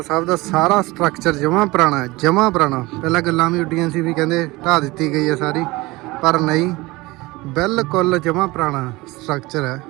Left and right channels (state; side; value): quieter; left; 21.5 dB